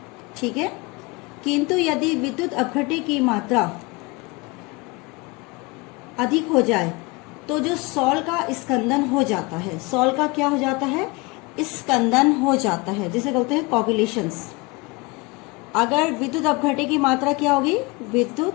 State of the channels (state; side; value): quieter; right; 25.7 dB